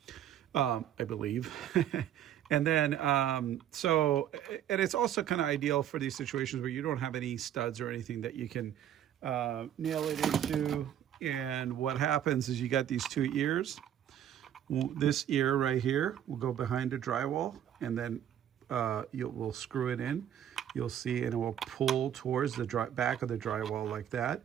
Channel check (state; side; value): quieter; left; 10.4 dB